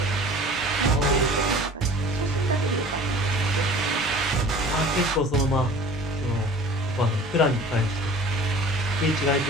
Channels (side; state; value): both; normal; correlation 0.44